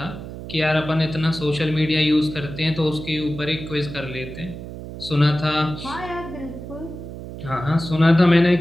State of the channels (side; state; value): right; noise; hum, 11 dB below the sound